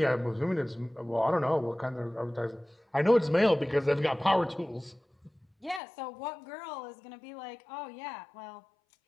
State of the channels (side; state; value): right; drops out; at 5.8 s